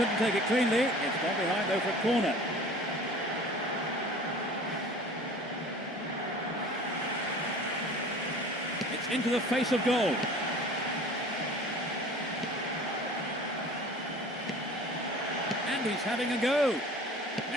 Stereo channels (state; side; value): normal; both; correlation 0.44